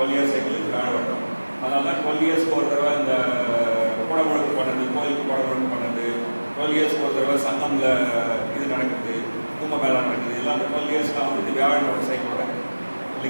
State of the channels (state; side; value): inverted; both; correlation -1.00